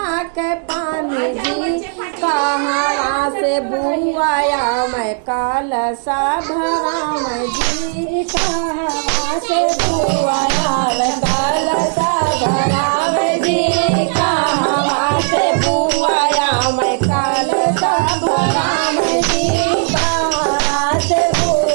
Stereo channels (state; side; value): silent; left; 58 dB below the other